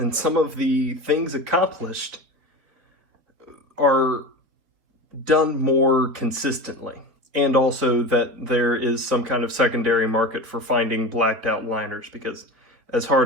things accomplished are done more consistently. And also that there is some kind of secondary market for finding blacked out liners, because as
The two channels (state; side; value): late; left; 4.1 ms